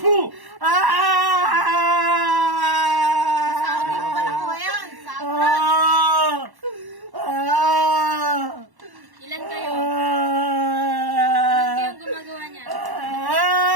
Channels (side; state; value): left; late; 1.1 ms